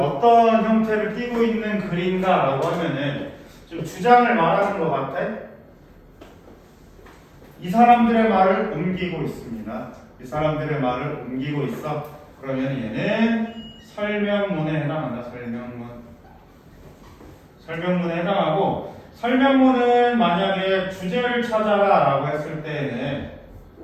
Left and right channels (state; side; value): identical; both; correlation 1.00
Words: 형태를 띠고 있는 글인가라고 하면은 좀 주장을 말하는 것 같아. 이 사람들의 말을 옮기고 있습니다. 이 사람들의 말을 옮기고 있어. 그러면 얘는 설명문에 해당한다. 설명문에 해당하고, 설명문은 만약에 주제를 찾아라 라고 했을 때에는